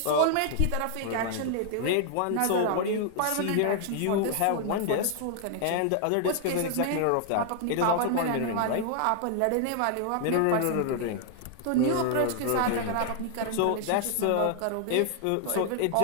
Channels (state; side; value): different; both; correlation 0.00